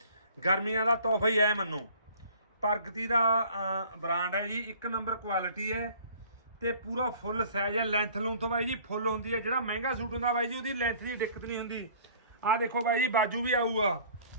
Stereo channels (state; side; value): inverted; both; correlation -0.51